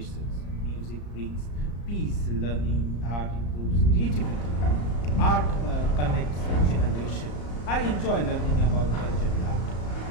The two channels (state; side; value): late; right; 34 ms